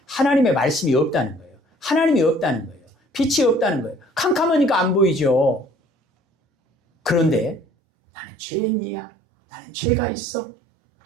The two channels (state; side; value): drops out; left; at 7.6 s